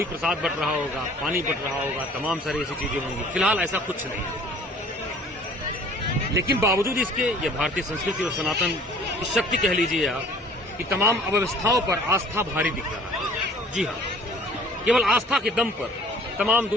प्रसाद बट रहा होगा, पानी बट रहा होगा, तमाम सारी ऐसी चीजें होंगी। फिलहाल ऐसा कुछ नहीं है, लेकिन बावजूद इसके ये भारतीय संस्कृति और सनातन की शक्ति कह लीजिए आप कि तमाम अव्यवस्थाओं पर आस्था भारी दिख रहा है। जी हाँ, केवल आस्था के दम पर तमाम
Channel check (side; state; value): both; normal; correlation 0.51